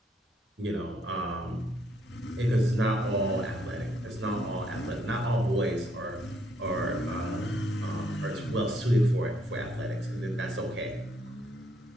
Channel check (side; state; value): both; normal; correlation 0.71